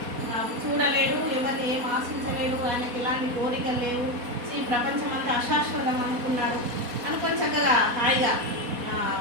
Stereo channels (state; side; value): late; left; 4.1 ms